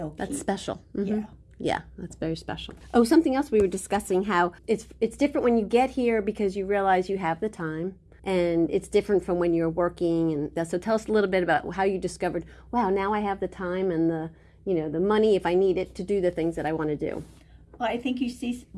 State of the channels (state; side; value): identical; both; correlation 1.00